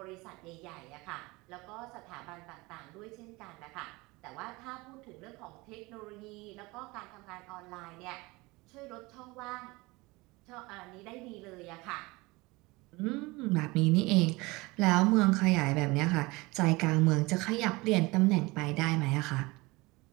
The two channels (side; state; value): left; quieter; 23.1 dB